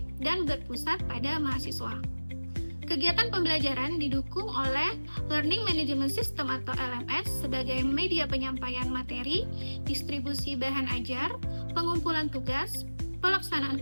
dan berpusat pada mahasiswa. Kegiatan pembelajaran didukung oleh Learning Management System atau LMS sebagai media penyampaian materi, distribusi bahan ajar, pengumpulan tugas, pelaksanaan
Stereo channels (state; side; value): inverted; both; correlation -1.00